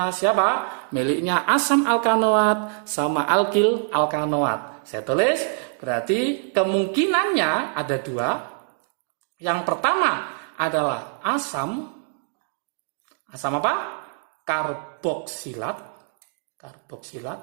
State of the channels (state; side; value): silent; left; 62 dB below the other